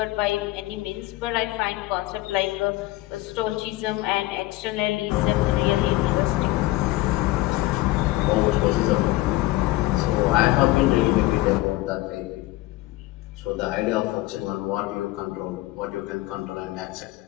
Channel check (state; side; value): quieter; right; 17.9 dB